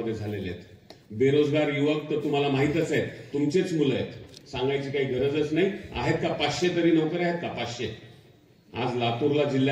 झालेले आहेत. बेरोजगार युवक तर तुम्हाला माहितच आहेत, तुमचेच मुलं आहेत, सांगायची काही गरजच नाही. आहेत का 500 तरी नोकऱ्या आहेत का? 500. आज लातूरला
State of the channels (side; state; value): both; identical; correlation 1.00